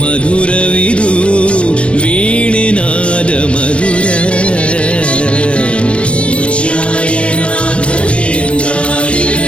ಮಧುರವಿದು ವೀಣೆನಾದ ಮಧುರ.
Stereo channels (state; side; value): late; right; 0.059 ms